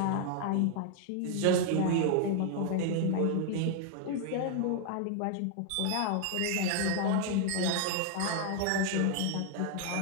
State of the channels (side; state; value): both; different; correlation 0.00